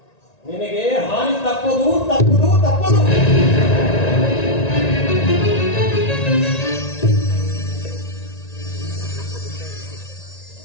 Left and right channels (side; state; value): right; late; 1.9 ms